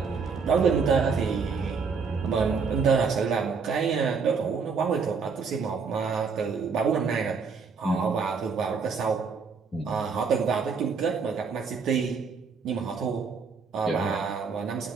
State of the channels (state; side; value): quieter; left; 5.3 dB